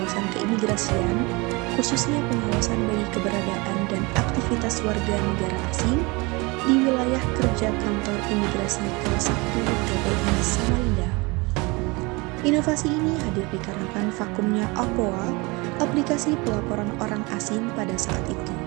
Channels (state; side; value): quieter; left; 26.0 dB